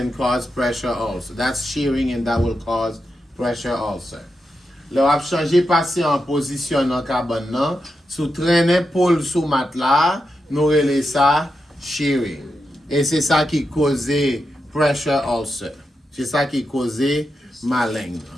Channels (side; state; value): both; normal; correlation 0.87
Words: cause pressure ulcer. That's shearing and that will cause pressure ulcer. Le ap chanje patient en position nan cabane nan, sou traîner pôle sous matelas, nou rele ça shearing. Et c'est ça qui cause pressure ulcer. C'est ça qui cause malin,